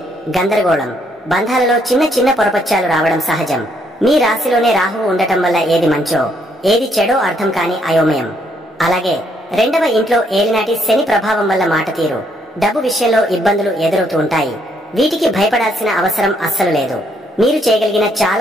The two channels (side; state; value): both; normal; correlation 0.71